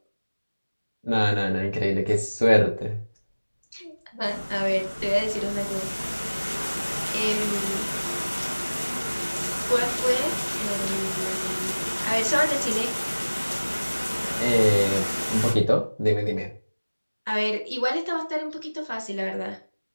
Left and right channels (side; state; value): both; inverted; correlation -1.00